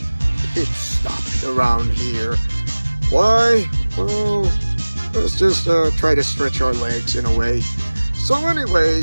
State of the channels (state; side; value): inverted; both; correlation -1.00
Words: pit stop around here. Why? Well, let's just try to stretch our legs in a way. So